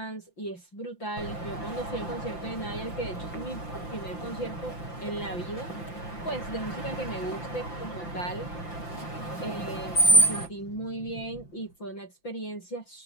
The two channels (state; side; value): late; right; 5.8 ms